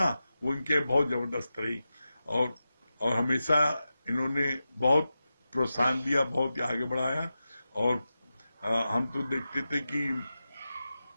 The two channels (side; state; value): both; inverted; correlation -0.92